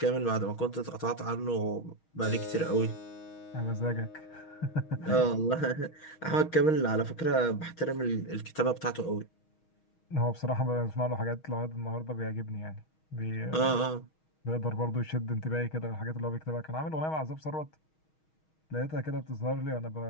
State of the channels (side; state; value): right; late; 6.3 ms